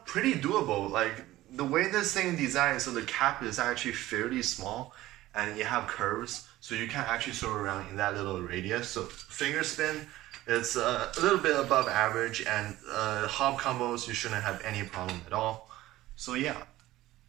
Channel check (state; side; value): quieter; left; 16.2 dB